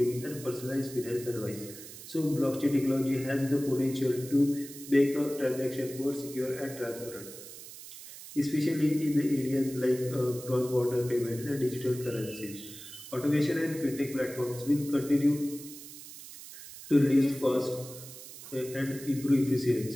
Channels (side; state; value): right; noise; hiss, 14 dB below the sound